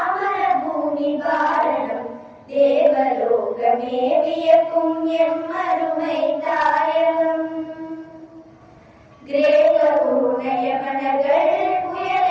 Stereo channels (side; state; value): both; identical; correlation 1.00